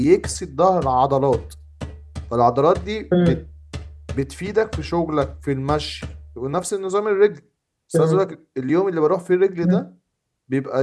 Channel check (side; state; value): both; identical; correlation 1.00